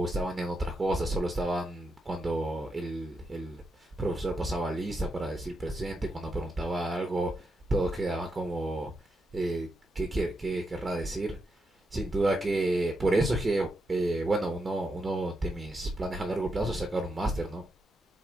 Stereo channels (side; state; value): both; normal; correlation 0.84